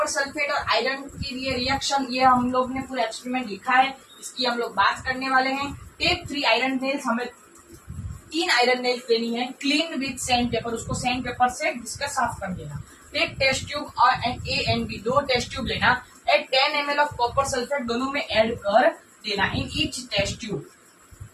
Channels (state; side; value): identical; both; correlation 1.00